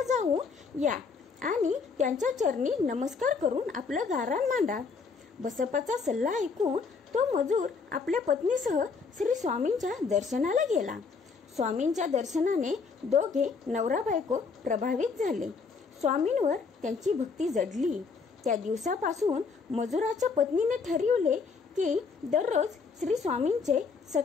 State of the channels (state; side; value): quieter; right; 5.0 dB